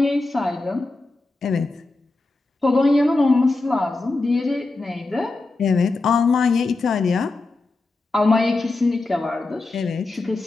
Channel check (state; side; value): quieter; right; 3.3 dB